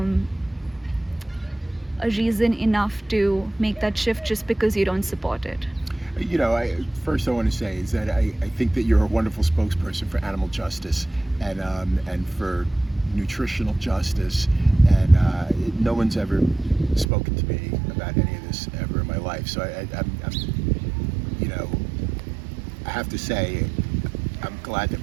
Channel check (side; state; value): left; drops out; at 17.1 s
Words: reason enough to make that shift just because you don't support it? First I want to say is that I think that you're a wonderful spokesperson for animal justice and for nutritional justice, and no one's ever spoken to me about any of this ever in my life. So I have to say I'm glad that